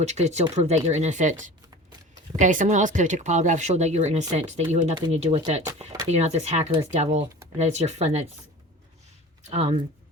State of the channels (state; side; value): normal; both; correlation 0.38